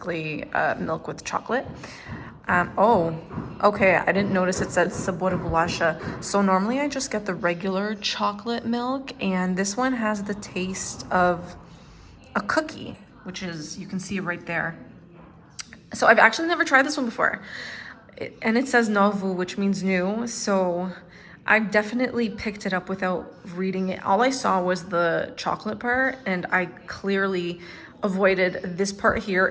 milk with chocolate. Oh, okay, I didn't notice it said sabor bolacha. So normally I just get the regular chocolate milk, and this one has the taste of a cookie, which is, you can see it right there. So I've actually never tried this one before. And it says novo, which means new. So I definitely picked it up without reading it. All I saw was the chocolate part, and I clearly avoided this part here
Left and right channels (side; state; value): both; identical; correlation 1.00